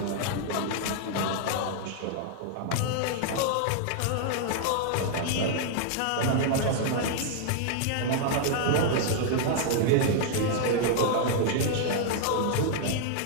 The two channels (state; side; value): different; both; correlation -0.01